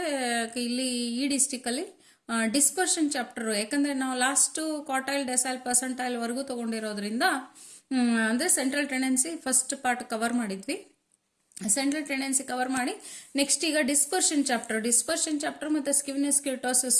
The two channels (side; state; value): both; identical; correlation 1.00